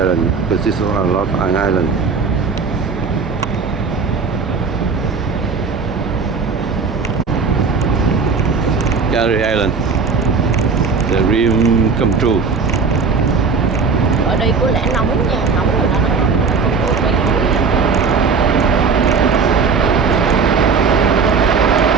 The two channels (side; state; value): left; quieter; 5.1 dB